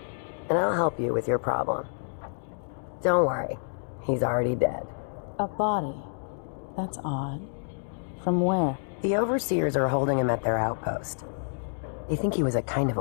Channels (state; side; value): silent; right; digital silence